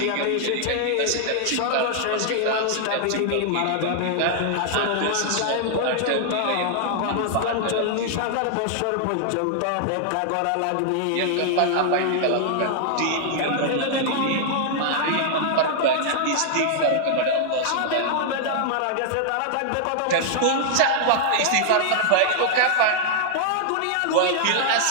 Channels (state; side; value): different; both; correlation -0.01